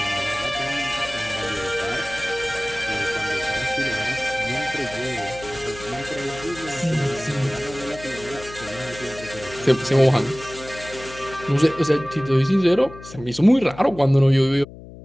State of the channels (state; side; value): noise; left; hum, 16 dB below the sound